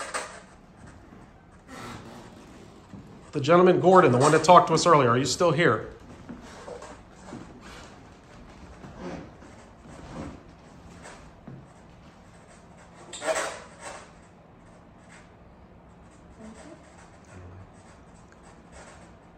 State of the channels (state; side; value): identical; both; correlation 1.00